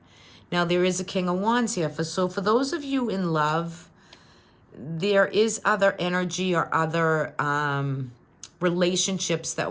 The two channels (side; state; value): both; identical; correlation 1.00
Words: Now, there is a King of Wands here. So for those of you in love, there is other energy or other relationships